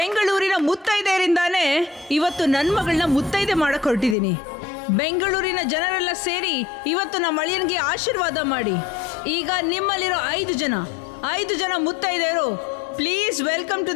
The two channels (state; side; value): drops out; right; at 4.2 s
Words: ಮುತ್ತೈದೆಯರಿಂದಾನೇ ಇವತ್ತು ನನ್ನ ಮಗಳನ್ನ ಮುತ್ತೈದೆ ಮಾಡಕ್ ಹೊರಟಿದ್ದೀನಿ. ಬೆಂಗಳೂರಿನ ಜನರೆಲ್ಲ ಸೇರಿ ಇವತ್ತು ನಮ್ಮ ಅಳಿಯನಿಗೆ ಆಶೀರ್ವಾದ ಮಾಡಿ. ಈಗ ನಿಮ್ಮಲ್ಲಿರೋ 5 ಜನ ಮುತ್ತೈದೆಯರು, please welcome to